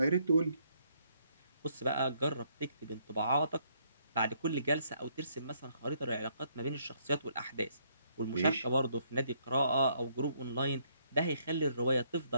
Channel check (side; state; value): both; inverted; correlation -0.70